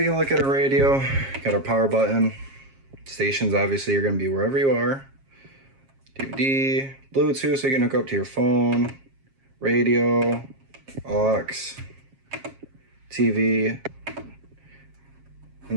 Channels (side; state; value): left; late; 7.4 ms